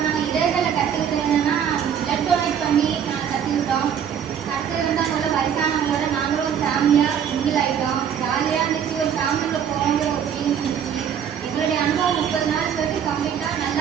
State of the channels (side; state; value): left; quieter; 8.3 dB